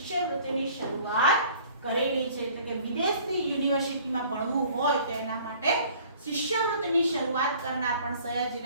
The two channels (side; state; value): both; inverted; correlation -0.52